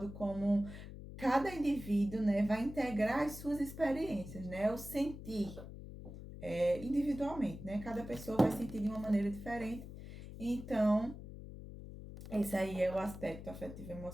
como cada indivíduo, né, vai integrar as suas experiências, né, o sentir individualmente, né, cada pessoa vai sentir de uma maneira diferente. Então, esse aí é o aspecto afetivo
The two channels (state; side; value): noise; left; hum, 12 dB below the sound